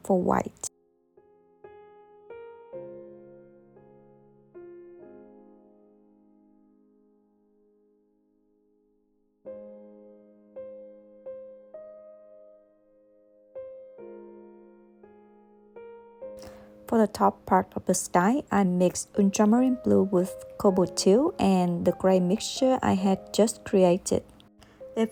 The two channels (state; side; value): identical; both; correlation 1.00